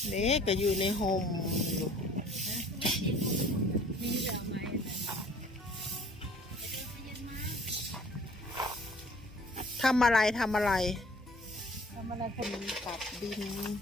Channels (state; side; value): normal; both; correlation 0.53